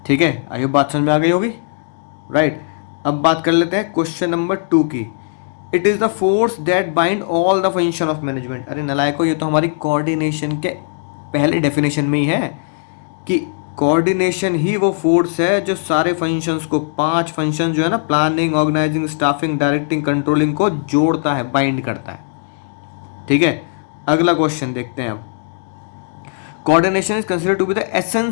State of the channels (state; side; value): silent; right; digital silence